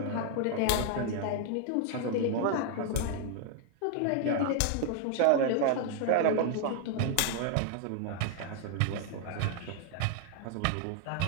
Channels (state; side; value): different; both; correlation 0.00